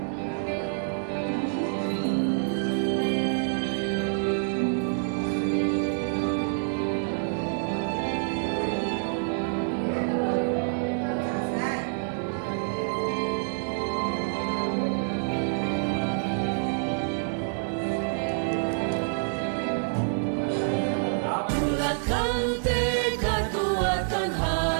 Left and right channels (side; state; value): left; silent; digital silence